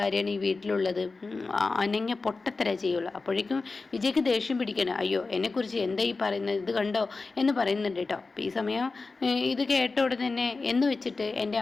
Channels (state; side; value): quieter; right; 3.9 dB